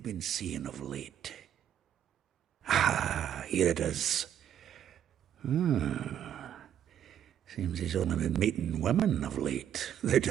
seeing of late? Here it is. Seems he's only been meeting women of late, the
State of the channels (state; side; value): quieter; left; 10.0 dB